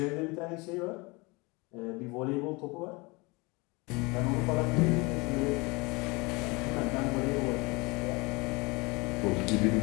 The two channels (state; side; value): quieter; right; 26.2 dB